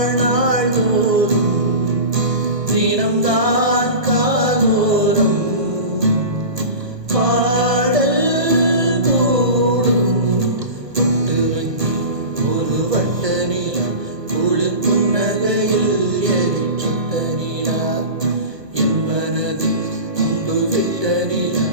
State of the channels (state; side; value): late; left; 1.4 ms